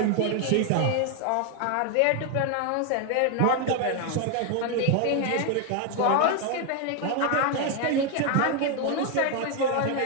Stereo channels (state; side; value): different; both; correlation 0.01